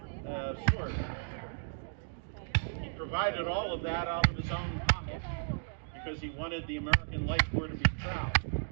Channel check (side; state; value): left; silent; digital silence